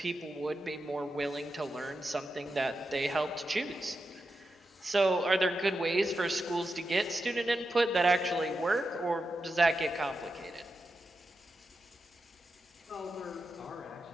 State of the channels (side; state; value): both; normal; correlation 0.89